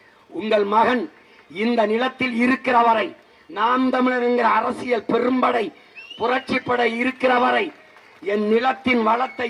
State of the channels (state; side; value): identical; both; correlation 1.00